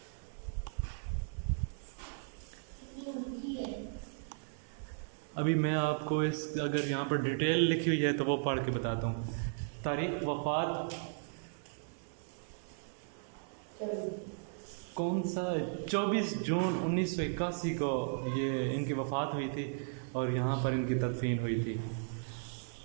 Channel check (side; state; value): left; silent; digital silence